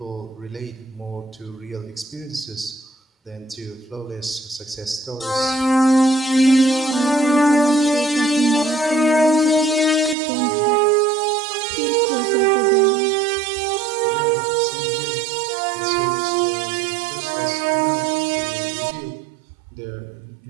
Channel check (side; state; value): left; drops out; at 10.2 s